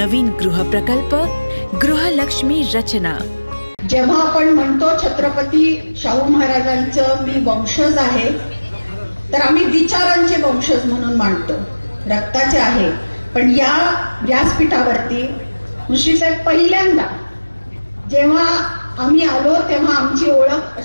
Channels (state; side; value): inverted; both; correlation -1.00